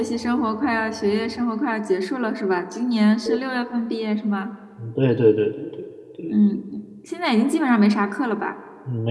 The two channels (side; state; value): both; identical; correlation 1.00